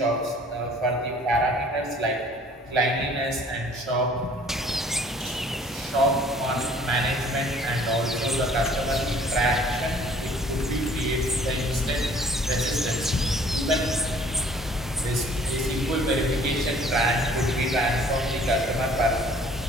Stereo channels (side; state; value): both; normal; correlation 0.54